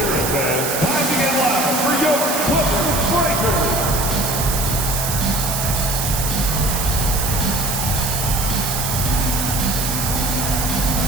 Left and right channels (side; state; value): right; noise; hiss, 2 dB below the sound